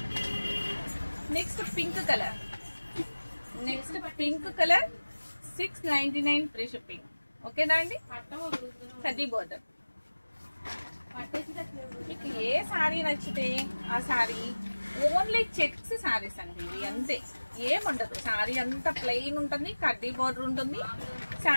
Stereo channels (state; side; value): inverted; both; correlation -1.00